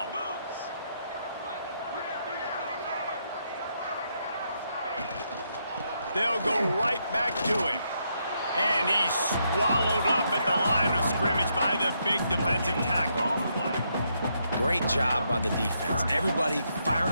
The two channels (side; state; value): both; inverted; correlation -0.78